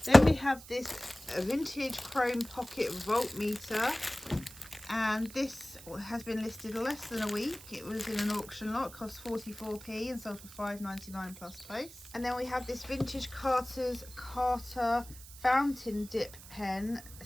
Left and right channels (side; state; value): right; noise; hiss, 17 dB below the sound